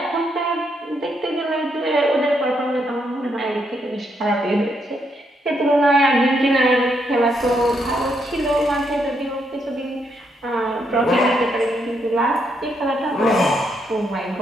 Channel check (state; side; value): normal; both; correlation 0.77